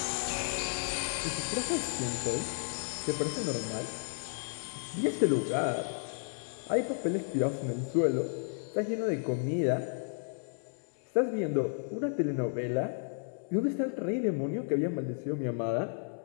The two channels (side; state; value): right; silent; digital silence